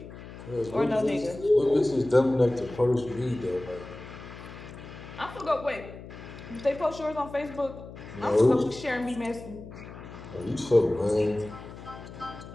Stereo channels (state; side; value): noise; left; hum, 14 dB below the sound